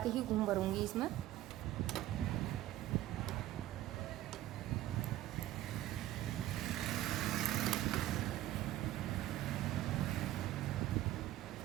ही घूम भरूंगी इसमें।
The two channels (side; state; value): left; quieter; 14.4 dB